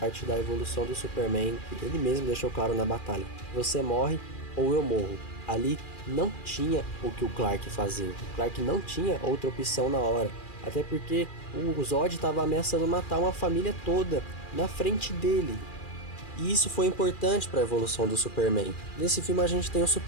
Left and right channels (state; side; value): late; right; 2.4 ms